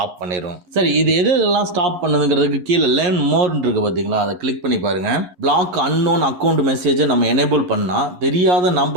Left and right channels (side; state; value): left; late; 11 ms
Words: பண்ணிடும். சரி, இது எதெல்லாம் ஸ்டாப் பண்ணுதுங்கிறதுக்கு கீழே லேர்ன் மோர்ன்னு இருக்கு பாத்தீங்களா, அதை கிளிக் பண்ணி பாருங்க. பிளாக் அன்னோன் அக்கௌண்ட் மெசேஜை நம்ம எனேபிள் பண்ணா தெரியாத